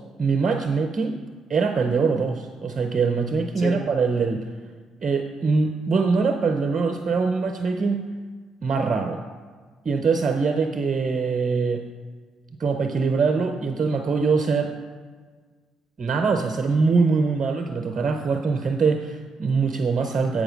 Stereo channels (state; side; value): quieter; left; 4.3 dB